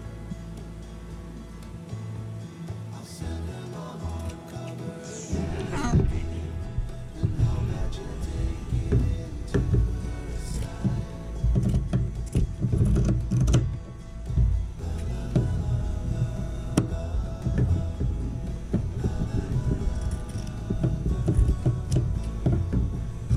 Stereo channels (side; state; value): both; identical; correlation 1.00